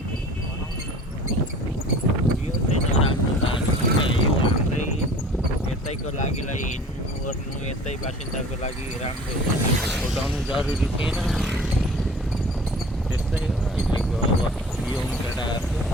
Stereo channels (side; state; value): both; normal; correlation 0.45